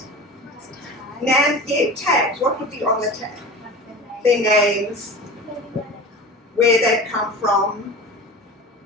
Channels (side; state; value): both; normal; correlation 0.33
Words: Tags. What would be on the tag? Their names, where they've come from.